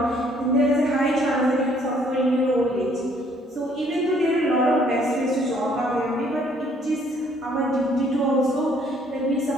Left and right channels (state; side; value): normal; both; correlation 0.63